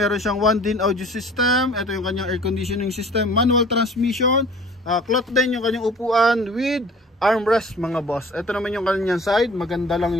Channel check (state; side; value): normal; both; correlation 0.47